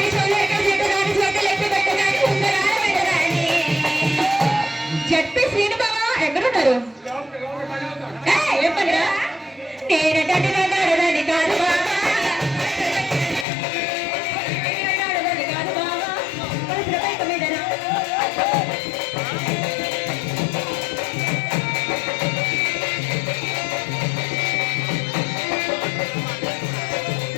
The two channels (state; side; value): drops out; right; at 13.5 s